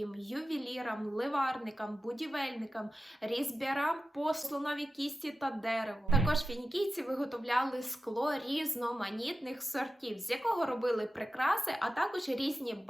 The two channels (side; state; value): both; normal; correlation 0.93